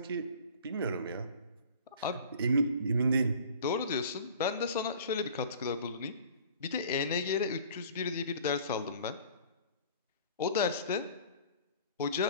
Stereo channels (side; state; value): both; inverted; correlation -0.46